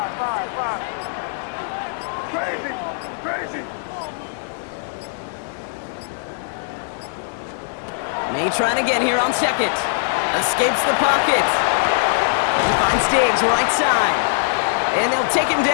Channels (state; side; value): silent; right; digital silence